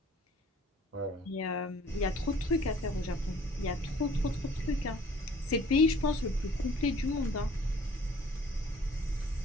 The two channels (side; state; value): both; normal; correlation 0.54